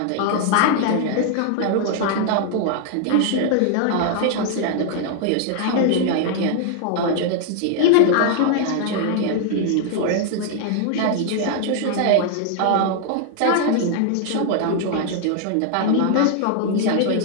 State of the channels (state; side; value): different; both; correlation 0.00